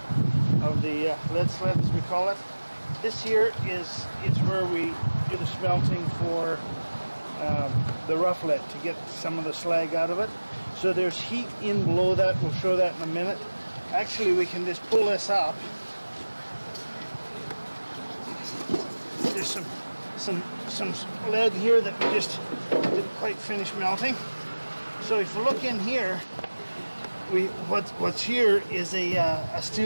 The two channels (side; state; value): both; inverted; correlation -1.00